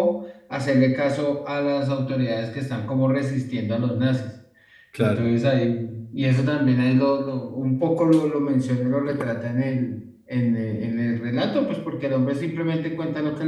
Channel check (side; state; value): both; identical; correlation 1.00